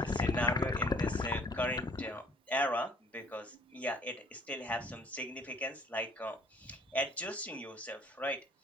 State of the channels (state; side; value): normal; both; correlation 0.57